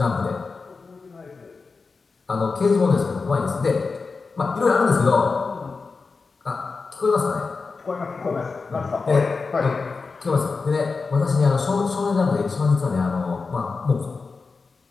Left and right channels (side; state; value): right; quieter; 4.4 dB